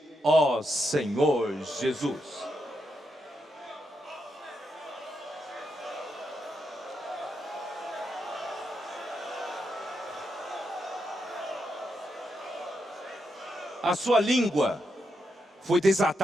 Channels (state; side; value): normal; both; correlation 0.83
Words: ó Senhor Jesus. A sua língua foi